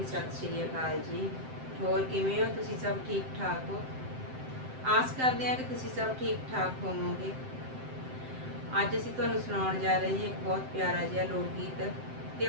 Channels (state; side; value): late; left; 7.7 ms